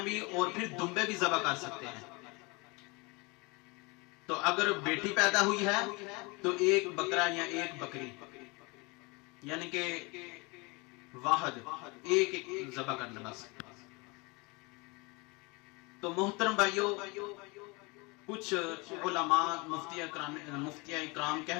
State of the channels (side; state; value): right; quieter; 27.4 dB